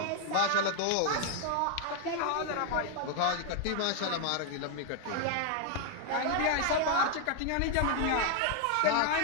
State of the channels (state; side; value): different; both; correlation 0.00